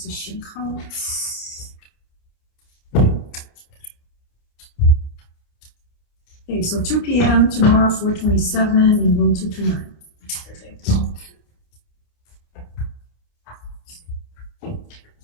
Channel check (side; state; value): right; late; 28 ms